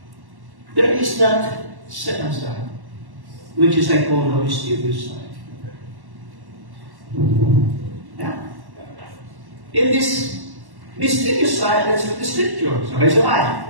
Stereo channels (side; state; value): left; late; 1.1 ms